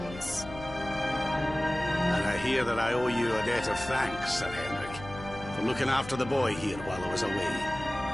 And I hear that I owe you a debt of thanks, Sir Henrik, for looking after the boy here while I was away.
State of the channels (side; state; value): left; noise; hum, 13 dB below the sound